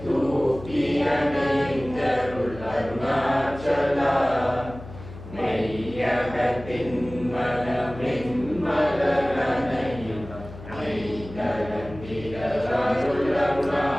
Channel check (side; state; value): left; noise; hum, 14 dB below the sound